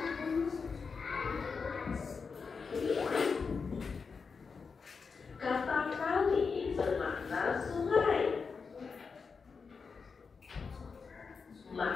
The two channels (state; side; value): quieter; right; 5.2 dB